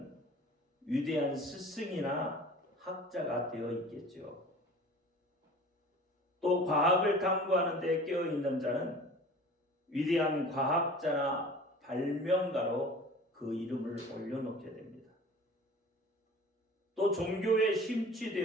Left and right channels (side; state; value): both; normal; correlation 0.43